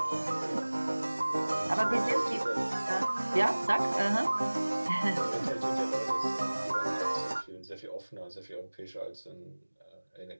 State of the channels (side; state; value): both; inverted; correlation -1.00